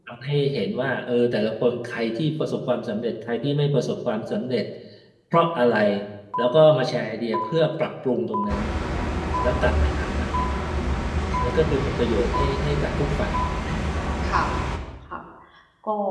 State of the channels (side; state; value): both; identical; correlation 1.00